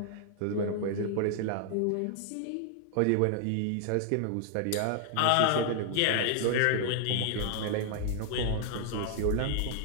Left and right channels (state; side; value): different; both; correlation 0.00